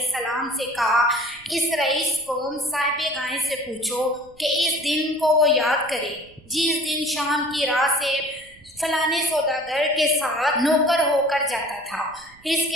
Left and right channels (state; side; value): noise; right; rumble, 27 dB below the sound